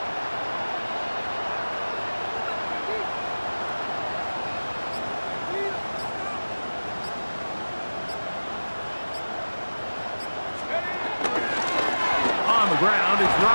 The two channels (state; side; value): inverted; both; correlation -1.00